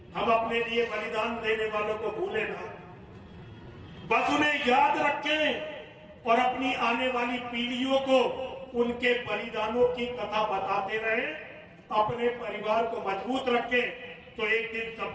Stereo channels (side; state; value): both; identical; correlation 1.00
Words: हम अपने लिए बलिदान देने वालों को भूले ना, बस उन्हें याद रखें और अपनी आने वाली पीढ़ियों को उनके बलिदानों की कथा बताते रहे। अपने परिवार को मजबूत रखें तो एक दिन